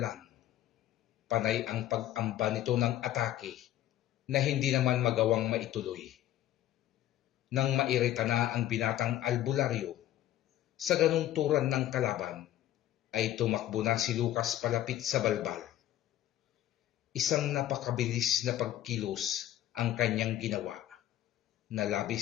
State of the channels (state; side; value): quieter; right; 13.0 dB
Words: Panay ang pag-amba nito ng atake na hindi naman magawang maituloy. Nang mairita na ang binatang albularyo sa ganung turan ng kalaban, ay tumakbo na si Lucas palapit sa balbal. Isang napakabilis na pagkilos ang kanyang ginawa, na